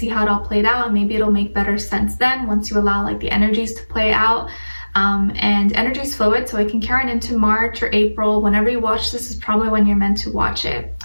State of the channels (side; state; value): both; inverted; correlation -1.00